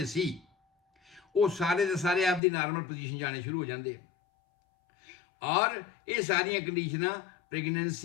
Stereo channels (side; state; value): right; drops out; at 2.4 s